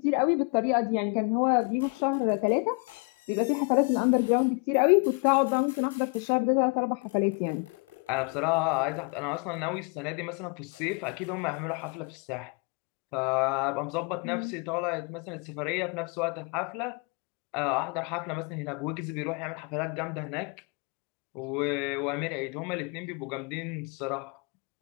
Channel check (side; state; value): right; quieter; 33.1 dB